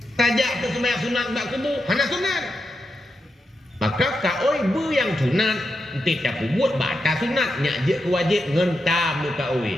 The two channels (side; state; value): both; normal; correlation 0.86